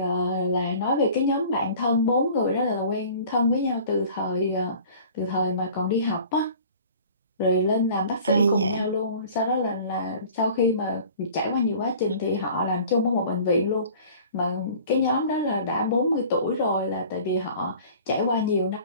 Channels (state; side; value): inverted; both; correlation -0.46